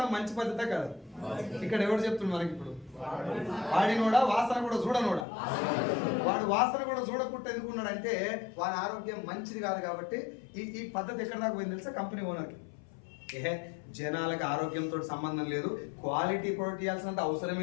మంచి పద్ధతే కాదు. ఇక్కడ ఎవరు చెప్తున్నారు మనకి? ఇప్పుడు వాడినోడా, వాసన కూడా చూడనోడా? వాడు వాసన కూడా చూడకుండా ఎందుకున్నాడంటే వాడి ఆరోగ్యం మంచిది కాదు కాబట్టి. ఈ పద్ధతి ఎక్కడ దాకా పోయింది తెలుసా? కంపెనీ ఓనర్కి. జనాలకు ఆరోగ్యంతో సంబంధం లేదు, క్వాలిటీ ప్రొడక్ట్ ఇవ్వాల్సినంత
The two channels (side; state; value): right; drops out; at 5.2 s